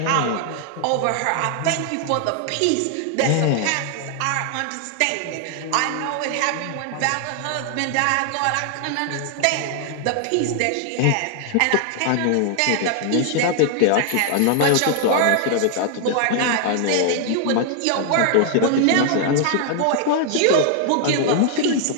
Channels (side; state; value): both; different; correlation 0.00